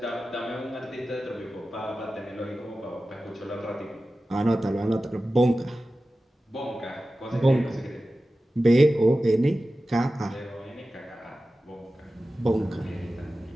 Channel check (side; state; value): both; normal; correlation 0.95